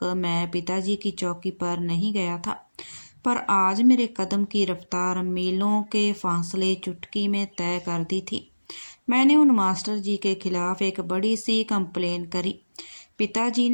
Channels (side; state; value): both; inverted; correlation -1.00